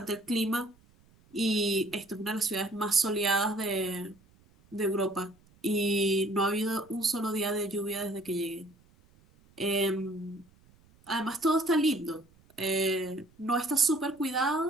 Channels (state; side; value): noise; right; rumble, 30 dB below the sound